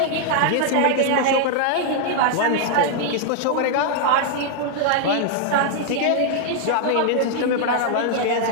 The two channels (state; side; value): different; both; correlation -0.01